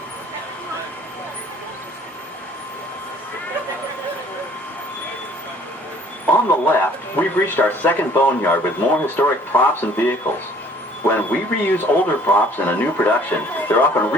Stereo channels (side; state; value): both; normal; correlation 0.56